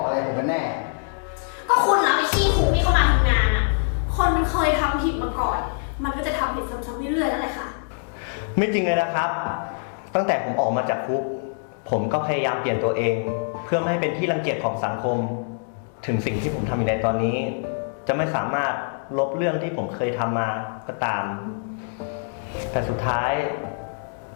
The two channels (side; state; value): right; silent; digital silence